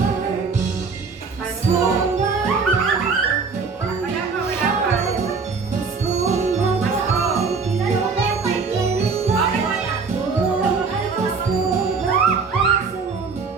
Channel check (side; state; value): left; quieter; 4.8 dB